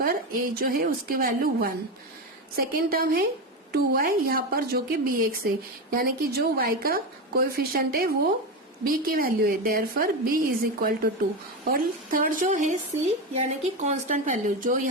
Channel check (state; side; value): normal; both; correlation 0.16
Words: a जो है उसकी वैल्यू 1. सेकेंड टर्म है 2y यहाँ पर जो कि bx है, यानी कि जो y का कोएफिशिएंट है वो b की वैल्यू है, therefore b is equal to 2. और थर्ड जो है c यानी कि कांस्टेंट वैल्यू जो